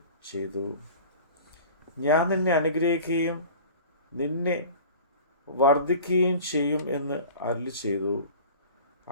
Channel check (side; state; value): both; inverted; correlation -0.40